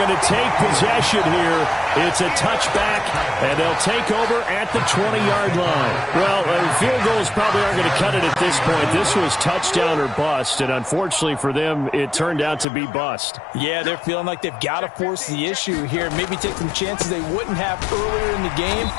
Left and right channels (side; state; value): right; drops out; at 12.7 s